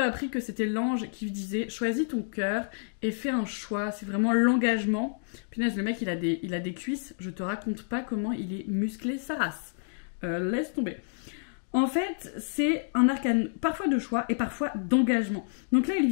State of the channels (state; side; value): silent; right; digital silence